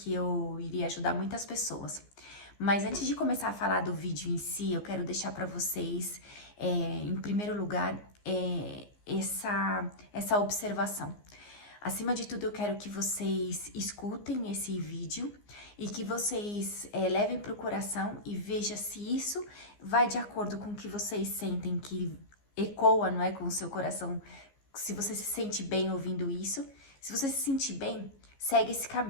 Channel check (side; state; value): right; late; 15 ms